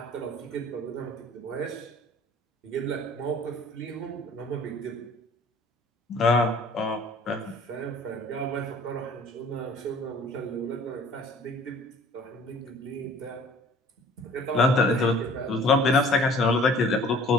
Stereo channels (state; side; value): normal; both; correlation 0.51